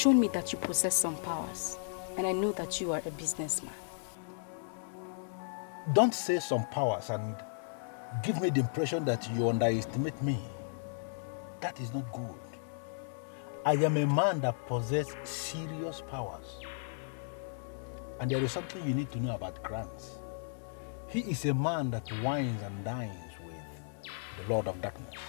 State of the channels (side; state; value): right; silent; digital silence